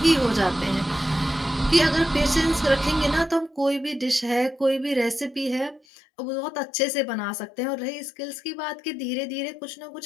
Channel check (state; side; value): drops out; right; at 5.8 s